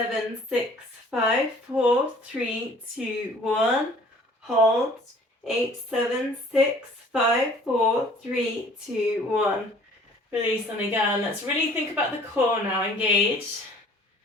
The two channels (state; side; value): normal; both; correlation 0.53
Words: 6, 5, 4, 3, 2, 1. Hold. 8, 7, 6, 5, 4, 3, 2, 1. Release on again. Let's really think about the core now. Engage.